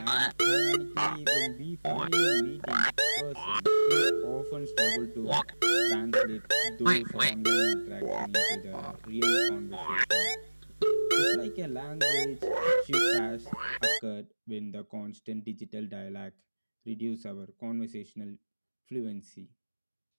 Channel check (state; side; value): inverted; both; correlation -1.00